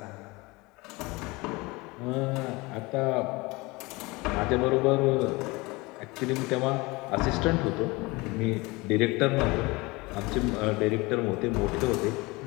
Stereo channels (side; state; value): right; quieter; 23.9 dB